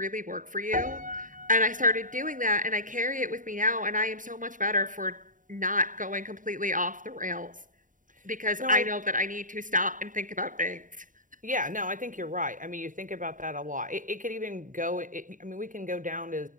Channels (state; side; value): late; left; 0.38 ms